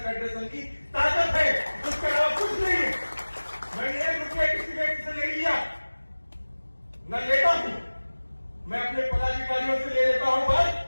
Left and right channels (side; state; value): both; inverted; correlation -1.00